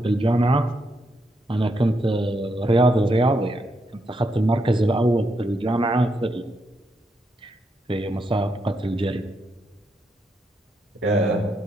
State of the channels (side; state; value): both; normal; correlation 0.80